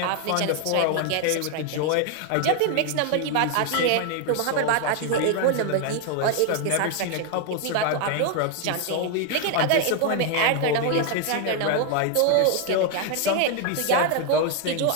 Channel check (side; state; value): both; different; correlation 0.01